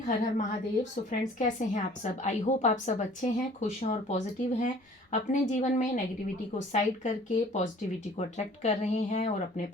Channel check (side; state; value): both; normal; correlation 0.51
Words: हर हर Mahadev. So friends, कैसे हैं आप सब? आई होप आप सब अच्छे हैं, खुश हैं और पॉजिटिव हैं। अपने जीवन में नेगेटिविटी को साइड करके पॉजिटिविटी को अट्रैक्ट कर रहे हैं और अपने